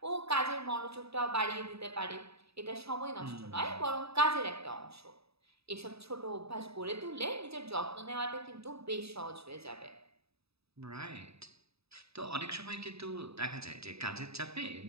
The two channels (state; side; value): late; left; 0.78 ms